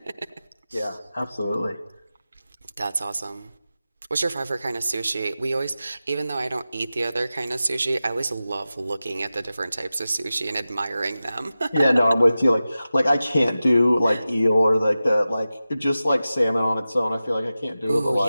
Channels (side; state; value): both; inverted; correlation -0.94